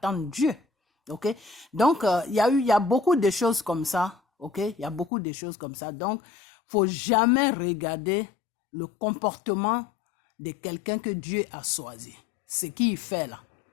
Dieu. Ok, donc il y a beaucoup de choses comme ça. Ok, il y a beaucoup de choses comme ça. Donc, faut jamais regarder le comportement de quelqu'un que Dieu a choisi. Ce qu'il fait là,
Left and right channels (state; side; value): drops out; right; at 5.1 s